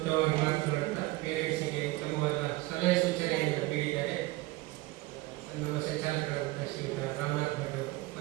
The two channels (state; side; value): quieter; left; 20.4 dB